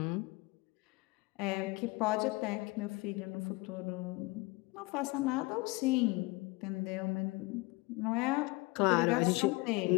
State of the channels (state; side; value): quieter; right; 24.5 dB